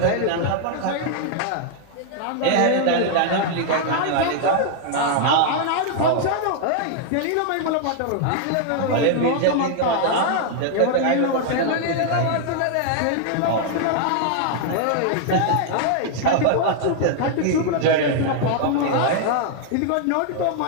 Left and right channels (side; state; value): both; different; correlation 0.00